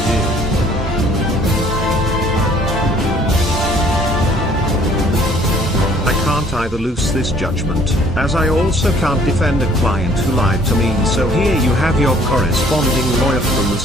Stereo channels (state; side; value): normal; both; correlation 0.58